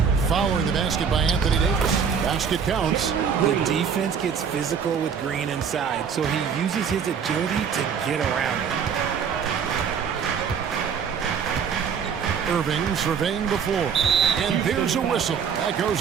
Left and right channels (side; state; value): left; quieter; 6.9 dB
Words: Following the basket by Anthony Davis. Basket counts. The defense gets physical with Green inside, so he uses his agility to get around it. Irving surveying the floor. And there's a whistle. That